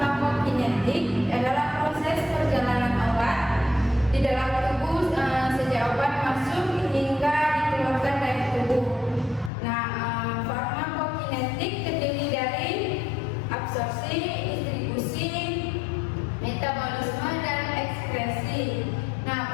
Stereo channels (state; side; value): drops out; right; at 9.5 s